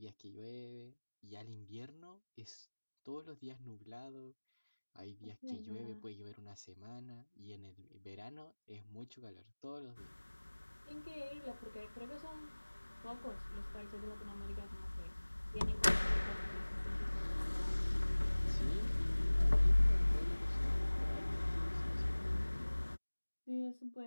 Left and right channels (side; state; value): both; inverted; correlation -1.00